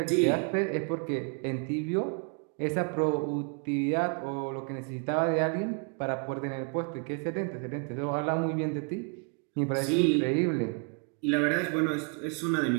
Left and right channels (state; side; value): quieter; left; 38.6 dB